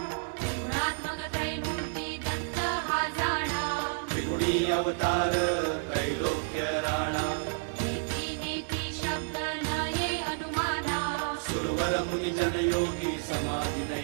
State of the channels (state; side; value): silent; left; digital silence